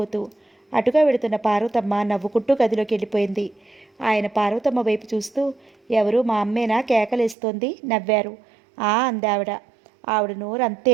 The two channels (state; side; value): drops out; left; at 7.4 s